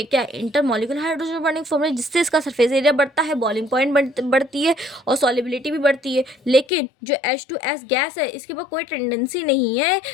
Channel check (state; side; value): drops out; right; at 6.7 s